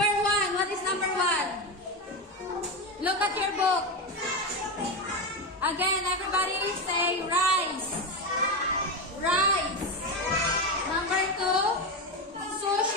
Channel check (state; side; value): normal; both; correlation 0.15